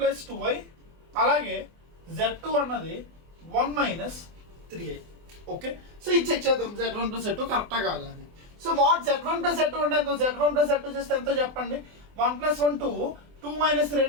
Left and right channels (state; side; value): late; left; 24 ms